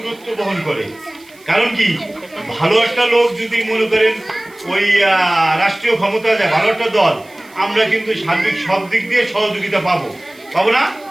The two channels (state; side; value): noise; right; hiss, 27 dB below the sound